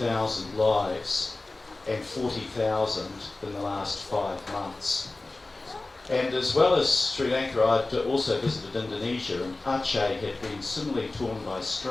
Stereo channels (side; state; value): right; quieter; 3.1 dB